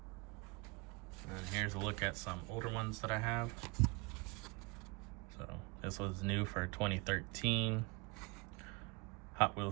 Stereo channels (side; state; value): left; quieter; 27.2 dB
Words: And here's a look at some older ones that I have. So this was new for 2013. Hot